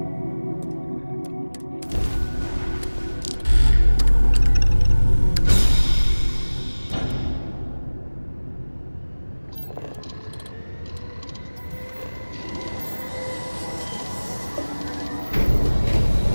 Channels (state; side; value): inverted; both; correlation -1.00